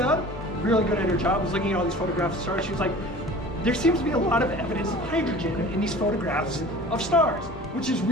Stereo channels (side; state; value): both; normal; correlation 0.42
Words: really good at her job, was looking at all these photographs of stars. She was like, there seems to be a lot of evidence of hydrogen in these photographs of stars, which is